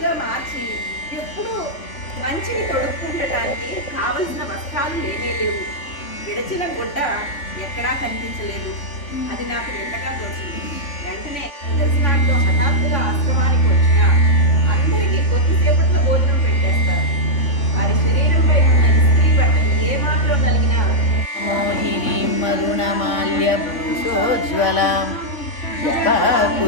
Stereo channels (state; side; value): late; right; 3.5 ms